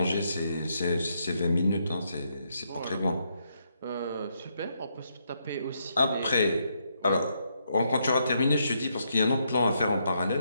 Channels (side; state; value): both; inverted; correlation -0.77